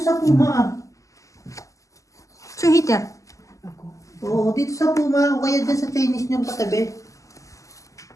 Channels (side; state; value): right; late; 0.16 ms